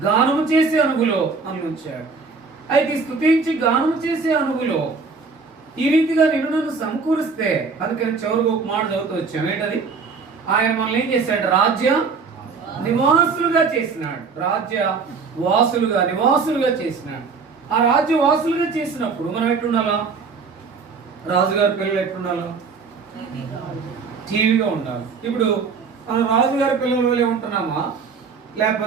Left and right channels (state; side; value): quieter; left; 4.9 dB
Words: గానము చేసే అనుగులో ఉంచాడు. అయితే స్తుతించి గానము చేసే అనుగులో ఈ రీతిగా నిన్ను నన్ను సమకూరిస్తే, అందుకని చివరికి ఒక మాట చదువుతూ వచ్చాం. ఏంటది? ఆయన మనల్ని ఏం చేశాడు? రాజ్య నివాసులుగా చేసినాడు. రాజ్య వాసులుగా నివాసులుగా చేసినాడు. ఆ రాజ్య వాసులుగా చేసినప్పుడు మనం ఎట్లుండాలా? రాజుగారి పిల్లలు ఎట్లుండాలా? టీవీగా ఉండాలి. ఇప్పుడు మనం రాజుగారి పిల్లల వల్లే ఉంటున్నామా